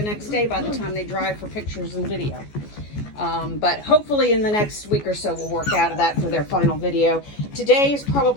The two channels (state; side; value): late; right; 14 ms